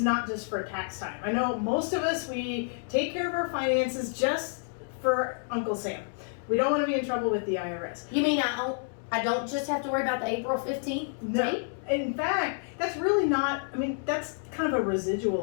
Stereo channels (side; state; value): right; silent; 58 dB below the other